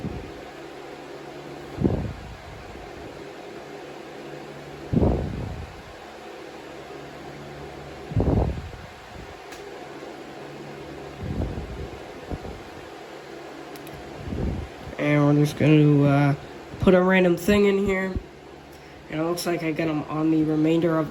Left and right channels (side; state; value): both; identical; correlation 1.00